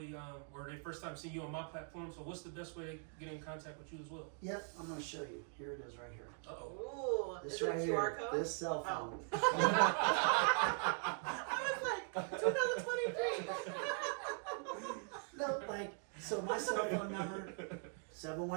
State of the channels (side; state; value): left; silent; 50 dB below the other